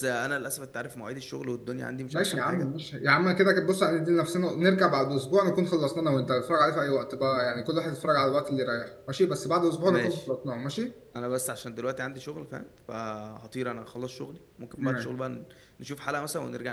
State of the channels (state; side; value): identical; both; correlation 1.00